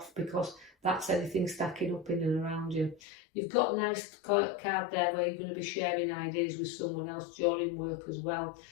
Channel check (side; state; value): right; drops out; at 3.0 s